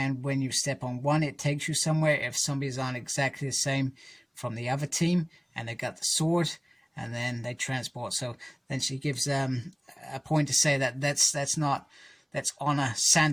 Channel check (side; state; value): both; identical; correlation 1.00